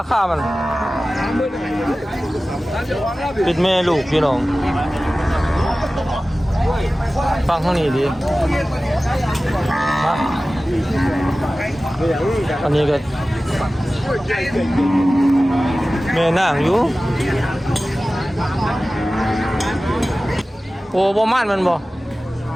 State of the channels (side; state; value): both; normal; correlation 0.96